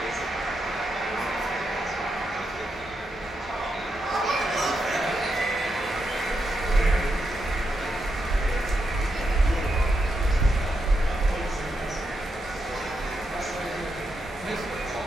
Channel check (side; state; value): both; normal; correlation 0.83